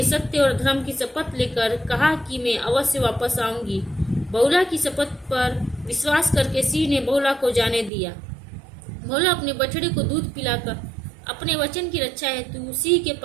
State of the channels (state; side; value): drops out; left; at 7.9 s